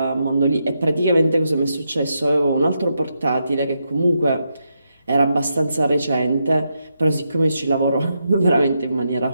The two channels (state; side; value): inverted; both; correlation -0.82